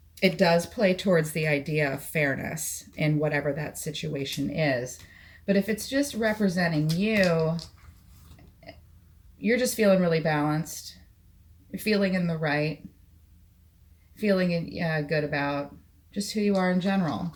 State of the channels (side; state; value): both; identical; correlation 1.00